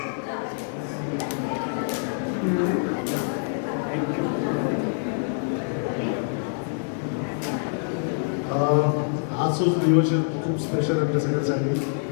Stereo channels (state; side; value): silent; right; 61 dB below the other